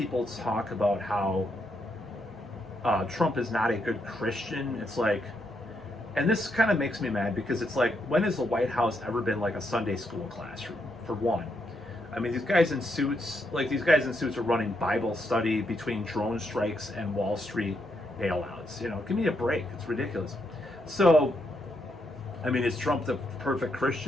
talk about how Trump is not a good Christian. It's like, and this kind of makes me mad because it's like, when has the White House ever been like a Sunday school classroom, for one? I mean, these guys in suits are running Bible study between drone strikes and Wall Street bailouts. Give me a break. It's ridiculous. So, I mean, is Trump the perfect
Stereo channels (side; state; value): both; normal; correlation 0.79